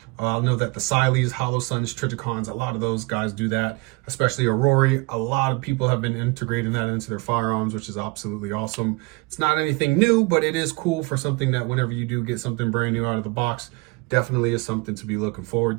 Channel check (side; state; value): left; quieter; 27.0 dB